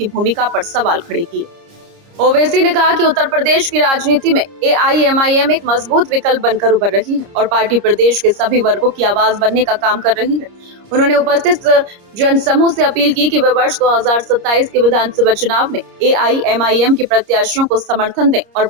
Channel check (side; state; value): left; late; 30 ms